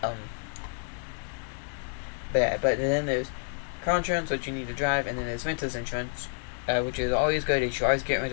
But then there's car insurance, which you need to drive, and then there's renter's insurance, which is always good. You should always get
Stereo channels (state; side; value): silent; right; 58 dB below the other